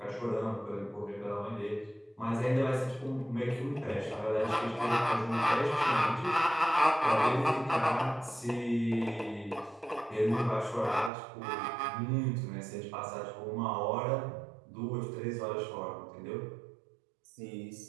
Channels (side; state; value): left; drops out; at 11.1 s